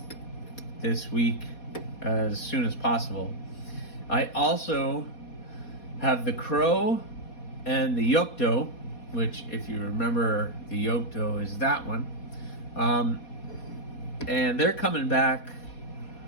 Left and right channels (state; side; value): late; right; 4.2 ms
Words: this week as soon as possible. I also have the Crow and the Yokto, which, if you remember, the Yokto is that one. And they're coming back.